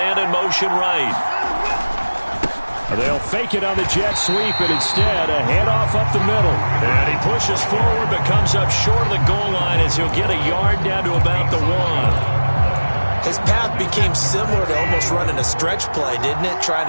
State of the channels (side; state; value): both; inverted; correlation -1.00